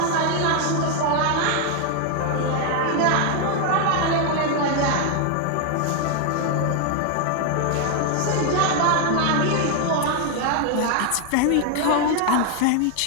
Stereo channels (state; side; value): different; both; correlation 0.01